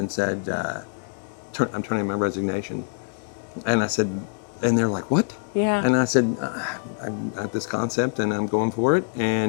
said, I'm turning in my resignation, and I said, and they're like, what? Yeah. And I said, I have this concept and I'm going for it,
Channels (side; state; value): right; silent; 62 dB below the other